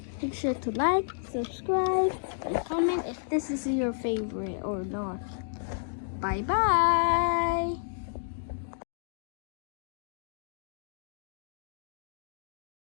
Make sure to like, subscribe, and comment if this is your favorite or not. Bye bye.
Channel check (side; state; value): right; silent; digital silence